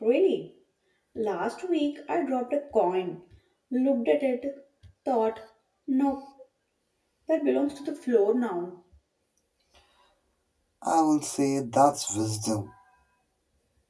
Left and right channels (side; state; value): both; identical; correlation 1.00